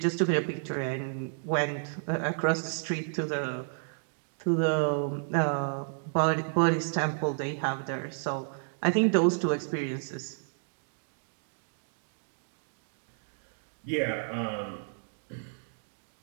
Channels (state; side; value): silent; left; digital silence